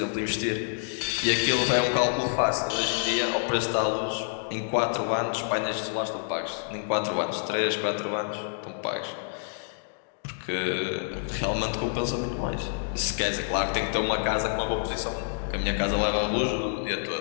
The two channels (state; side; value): silent; right; digital silence